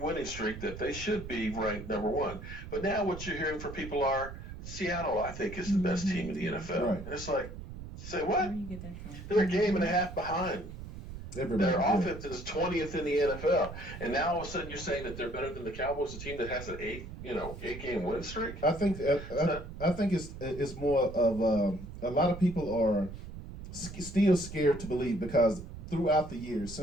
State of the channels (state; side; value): noise; right; rumble, 11 dB below the sound